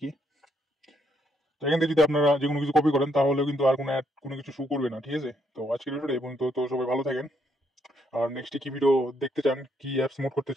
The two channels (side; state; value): both; normal; correlation 0.73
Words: কি। তো এখান থেকে যদি আপনারা যে কোনো কিছু কপি করেন তাহলে কিন্তু আর কোনো অ্যাড কোনো কিছু শো করবে না, ঠিক আছে? তো আজকের ভিডিওটা এবং তো সবাই ভালো থাকেন। আর নেক্সট কি ভিডিও দেখতে চান, কি অ্যাপস মোড করতে